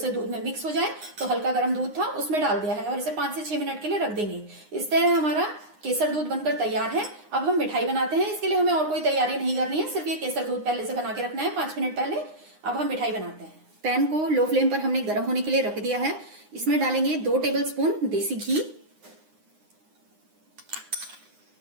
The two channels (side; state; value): left; late; 9.7 ms